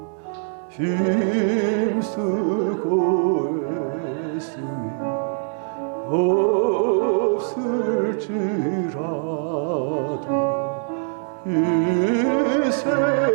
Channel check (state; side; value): silent; left; 64 dB below the other